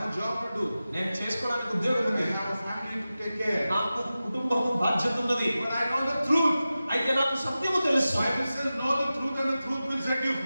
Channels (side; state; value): both; inverted; correlation -0.94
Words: a job to do. నేను చేసుకోవడానికి ఉద్యోగం ఉంది. I have a family to take care. నాకు కుటుంబం బాధ్యత ఉన్నది. But I know the truth. అయితే నాకు సత్యము తెలుసు. Bible says know the truth and the truth will set you